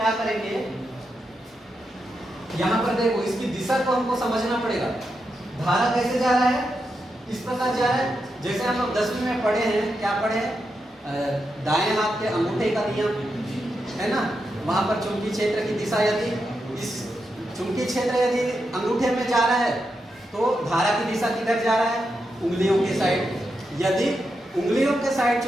करेंगे, यहाँ पर देखो, इसकी दिशा को हमको समझना पड़ेगा। धारा कैसे जा रहा है, इस प्रकार जा रहा है, जैसे हम लोग 10वीं में पढ़े हैं, क्या पढ़े हैं, दाएं हाथ के अंगूठे का नियम, है ना। वहां पर चुंबकीय क्षेत्र की दिशा, यदि इस चुंबकीय क्षेत्र यदि अंगूठे में जा रहा है तो धारा की दिशा किधर जा रहा है, उंगलियों के साइड। यदि उंगलियों के साइड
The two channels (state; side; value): normal; both; correlation 0.86